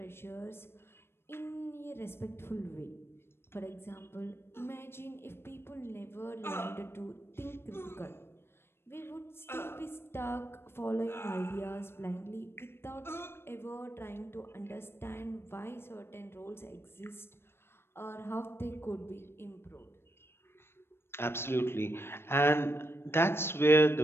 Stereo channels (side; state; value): right; late; 0.12 ms